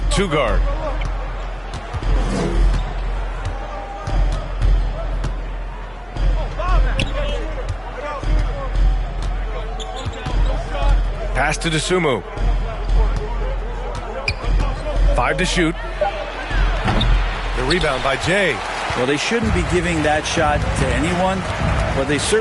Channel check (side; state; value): both; identical; correlation 1.00